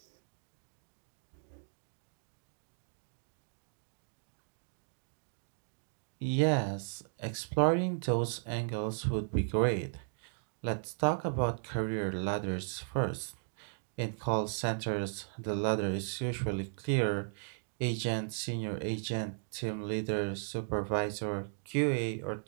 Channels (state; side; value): silent; left; digital silence